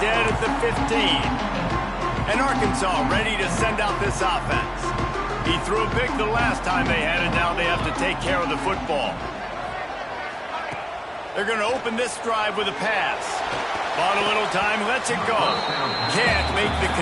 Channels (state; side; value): identical; both; correlation 1.00